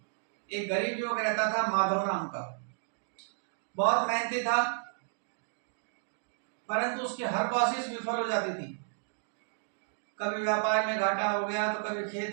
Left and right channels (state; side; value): silent; left; digital silence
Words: एक गरीब युवक रहता था, माधव नाम का। बहुत मेहनती था, परंतु उसकी हर कोशिश विफल हो जाती थी। कभी व्यापार में घाटा हो गया तो कभी